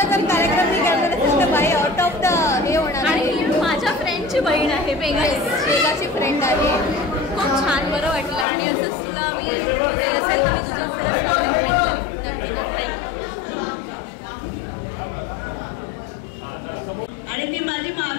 जर कार्यक्रम मी केला तर बाई आउट ऑफ द हे होणार. आणि माझ्या फ्रेंडची बहीण आहे, वेगाची फ्रेंड आहे. खूप छान बरं वाटलं आणि असंच तुला मी असेल तर मी तुझं खरंच नाव रिकमेंड करेन. आणि ती माझी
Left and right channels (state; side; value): drops out; right; at 8.5 s